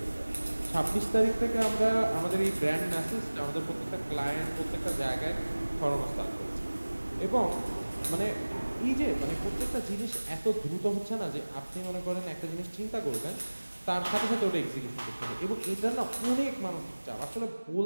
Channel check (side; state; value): both; inverted; correlation -1.00